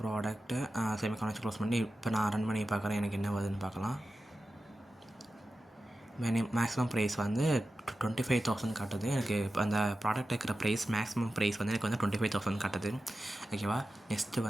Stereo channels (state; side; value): normal; both; correlation 0.93